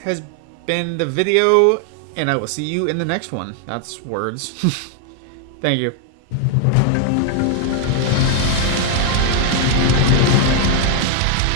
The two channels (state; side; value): different; both; correlation 0.00